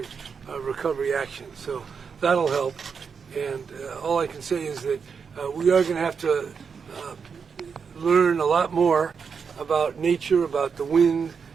recovery actions. So that'll help. And all I can say is that we are going to have to learn a lot more about nature, about the wind,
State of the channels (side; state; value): left; quieter; 6.0 dB